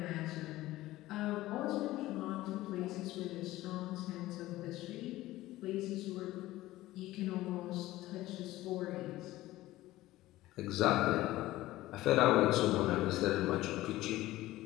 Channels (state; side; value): quieter; right; 16.7 dB